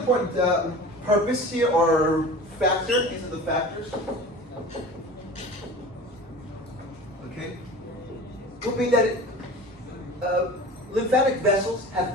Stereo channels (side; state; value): both; normal; correlation 0.37